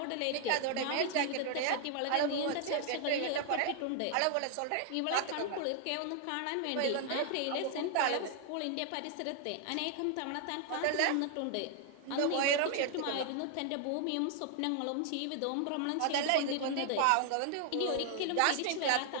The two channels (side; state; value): both; different; correlation 0.00